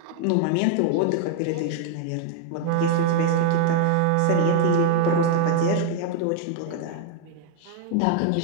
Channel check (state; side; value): different; both; correlation 0.00